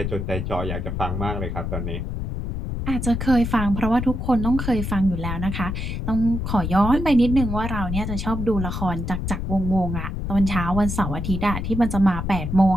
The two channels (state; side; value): noise; left; rumble, 3 dB below the sound